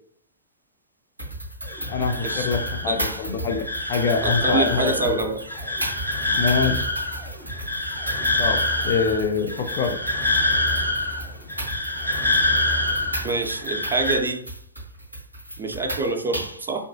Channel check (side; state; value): both; inverted; correlation -0.37